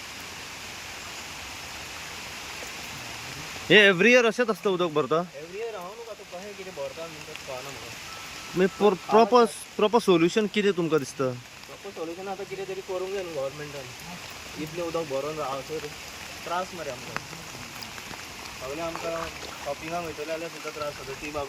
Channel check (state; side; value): identical; both; correlation 1.00